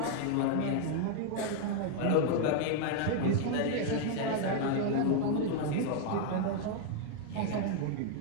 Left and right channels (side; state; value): both; different; correlation 0.00